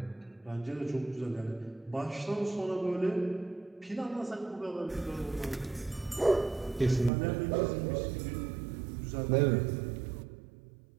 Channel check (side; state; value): left; drops out; at 7.1 s